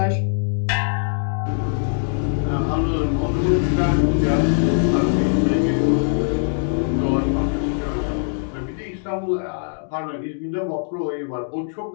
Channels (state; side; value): silent; right; digital silence